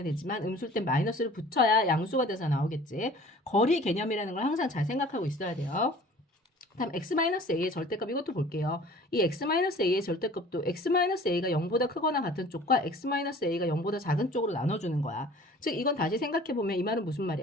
되지만 음수일 땐 마이너스를 붙여야 양수가 돼서 나오겠지. 거리 개념이라는 걸 항상 잘 생각하고 있어야 돼요. 다음 x-a의 절대값 이것도 볼게요. 이 x-a의 절대값도 x-a가 0보다 크거나 같은 쪽과 x-a가 0보다 작은 쪽으로 나눠주는 거야. 즉 이건 다시 생각해보면 이 말은 무슨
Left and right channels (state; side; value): normal; both; correlation 0.47